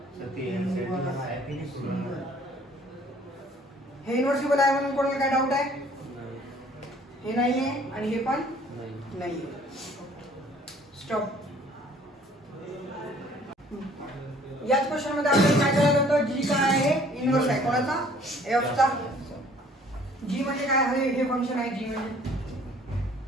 सत्य सेटिंग है कि नहीं सुन रहा हे इनवर्सिबल आहे म्हणून कोणाला काय डाऊट आहे हे नाही आहे आणि हे पण नाही स्टॉप. याच क्वेश्चन मध्ये आपण काय करायला होतं जी काय आहे इनवर्स आहे कोणाचा एफ चा. जी म्हणजे काय हे फंक्शन आहे जी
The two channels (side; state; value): both; normal; correlation 0.56